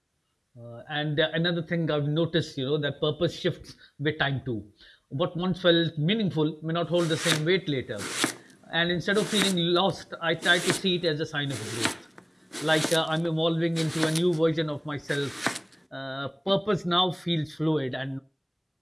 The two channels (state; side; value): identical; both; correlation 1.00